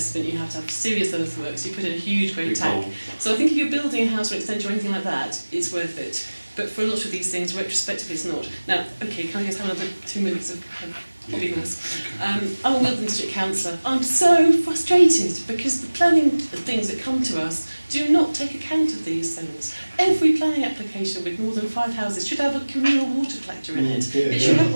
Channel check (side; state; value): both; inverted; correlation -1.00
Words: You have to have serious earthworks. You put in a huge great tank. So I think if you're building a house or extension or anything like that, it's worth it. But for a lot of these things, retrospectively, it's not. Now, okay, can I just have another 2 minutes of hobbiness? I'm a Wilton District Councillor. I'm so frustrated because the planning things that come to us do not take account of these things. Every planning application with more than 5 houses should have a communal water collector in it. It should have